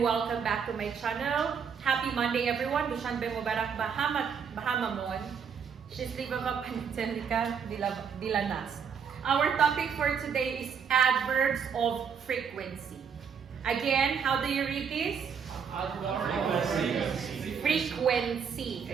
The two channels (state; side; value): quieter; left; 6.8 dB